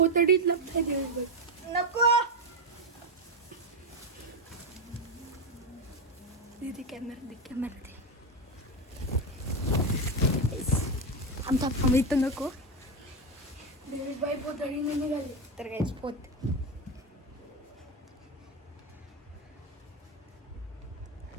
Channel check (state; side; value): normal; both; correlation 0.10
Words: लपताय देवीश बाई. नको दे कॅमेरा दे. आमचा इथं नको. देवीश बाई पोतडीने निघाली. तर काहीच पोत